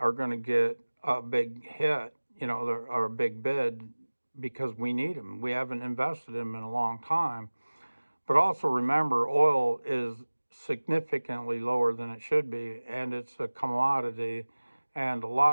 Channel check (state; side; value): inverted; both; correlation -1.00